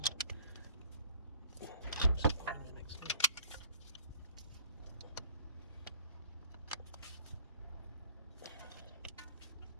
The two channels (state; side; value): inverted; both; correlation -0.54